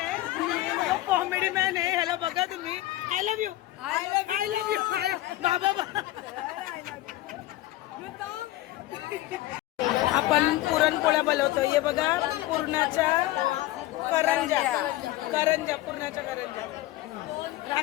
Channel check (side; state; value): right; quieter; 16.5 dB